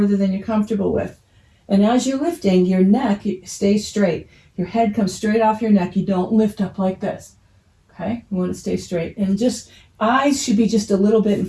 than you're comfortable with. And as you're lifting, your neck stays straight. Your head comes straight off your neck. You don't lift up like this. Okay? You want to stay straight. And just eyes should be just a little bit in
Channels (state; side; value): identical; both; correlation 1.00